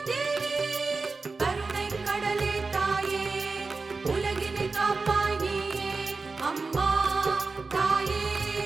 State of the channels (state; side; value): quieter; left; 4.0 dB